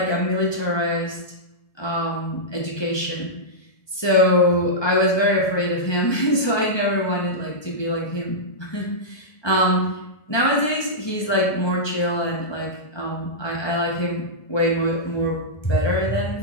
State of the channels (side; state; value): right; late; 1.2 ms